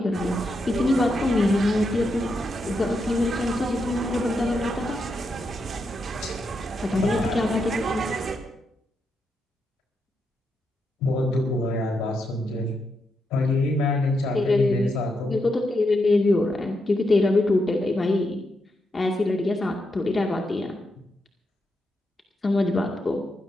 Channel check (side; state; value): both; normal; correlation 0.83